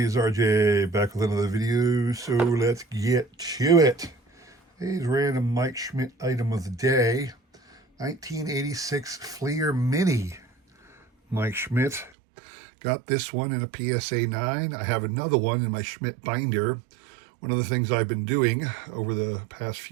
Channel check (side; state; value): left; drops out; at 12.1 s